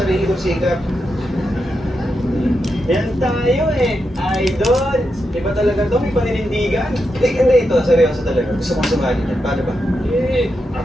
kong sikap. Yan tayo eh. Idol. Iba talaga to, may paninindigan. Hindi ito, seryoso talaga. Gusto kong sumali dyan. Paano ba?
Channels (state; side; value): normal; both; correlation 0.86